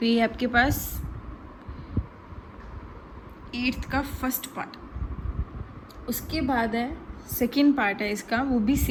ये आपके पास 8th का फर्स्ट पार्ट। उसके बाद है सेकंड पार्ट है इसका, वो भी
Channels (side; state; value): both; identical; correlation 1.00